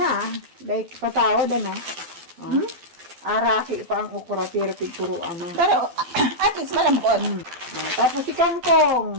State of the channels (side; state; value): left; late; 12 ms